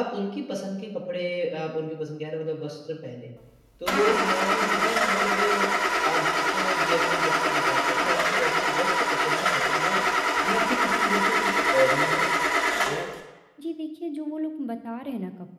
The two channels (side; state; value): both; identical; correlation 1.00